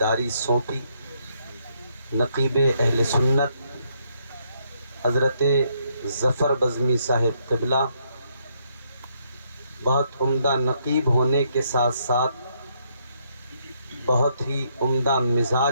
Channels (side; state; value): both; inverted; correlation -0.73